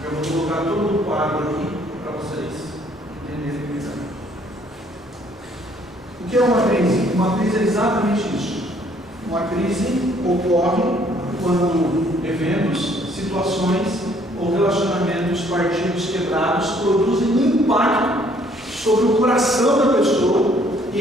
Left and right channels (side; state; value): both; normal; correlation 0.63